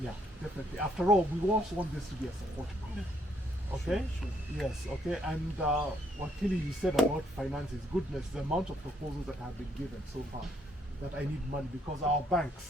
Yeah, definitely. After all, we also want this to be a support group. Okay? Yes, okay. And what Kili you said about finances, goodness, the amount of proposals that have been given so far, that I need money, because our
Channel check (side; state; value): both; normal; correlation 0.70